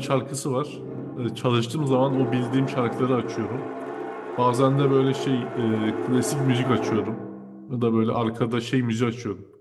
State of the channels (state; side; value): identical; both; correlation 1.00